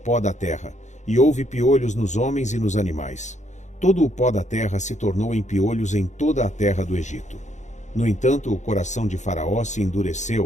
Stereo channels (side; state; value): right; late; 0.34 ms